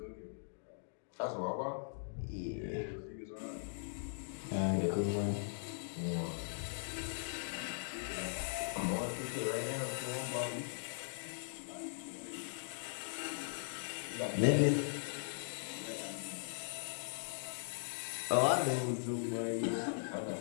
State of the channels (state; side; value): silent; right; digital silence